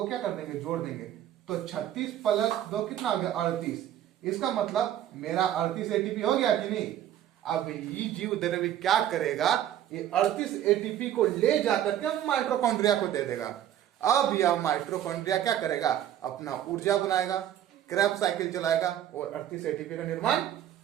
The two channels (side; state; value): left; quieter; 11.3 dB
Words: क्या कर देंगे? जोड़ देंगे, तो 36 प्लस 2 कितना आ गया? 38। इसका मतलब मेरा 38 एटीपी हो गया कि नहीं? अब ये जीव द्रव्य क्या करेगा? ये 38 एटीपी को ले जाकर के माइटोकॉन्ड्रिया को दे देगा। अब यह माइटोकॉन्ड्रिया क्या करेगा? अपना ऊर्जा बनाएगा, क्रैब साइकिल चलाएगा और 38 एटीपी का निर्माण